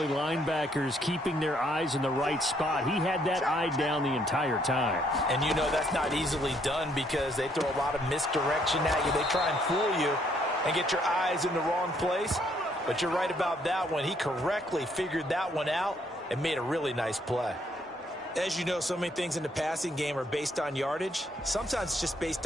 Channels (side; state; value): both; normal; correlation 0.69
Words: linebackers, keeping their eyes in the right spot, he had that eye down the entire time. And you know that's not easily done because they throw a lot of misdirection at you. They try and fool you and get your eyes in the wrong place. But you're right about that one. He correctly figured that one out and made a really nice play. As you know, so many things in the passing game are based on yardage. Sometimes it's just based